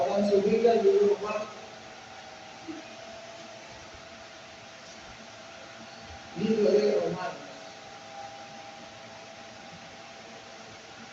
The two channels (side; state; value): both; identical; correlation 1.00